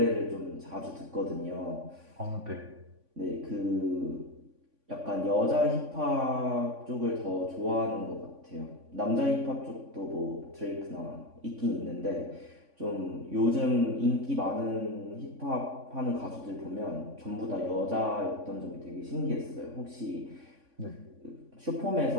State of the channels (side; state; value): left; late; 3.5 ms